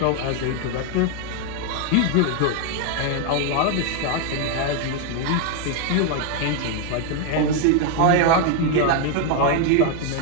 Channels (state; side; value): different; both; correlation 0.01